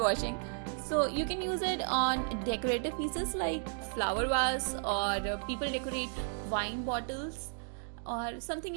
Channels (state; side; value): silent; left; 55 dB below the other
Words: So you can use it on decorative pieces like flower vase, or people decorate wine bottles or something